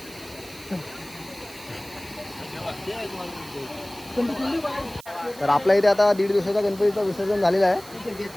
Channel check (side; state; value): right; noise; hiss, 19 dB below the sound